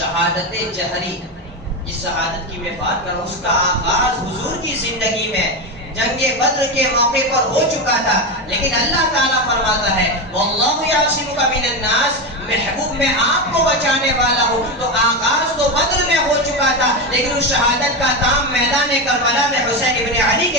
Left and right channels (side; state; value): both; normal; correlation 0.15